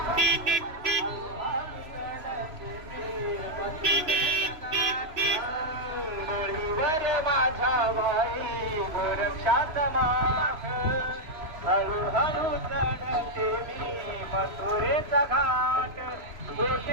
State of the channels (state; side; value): late; left; 3.0 ms